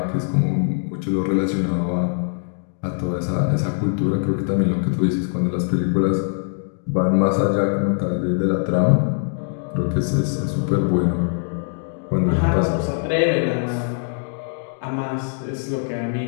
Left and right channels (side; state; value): right; silent; 60 dB below the other